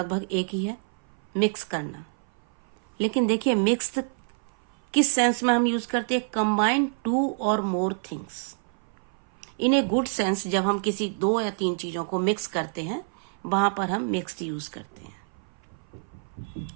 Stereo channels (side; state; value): left; silent; 57 dB below the other